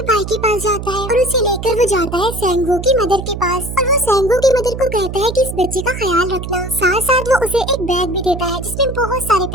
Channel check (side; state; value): right; noise; hum, 7 dB below the sound